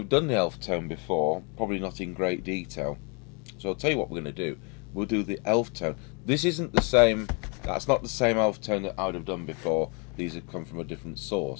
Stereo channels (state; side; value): quieter; right; 34.2 dB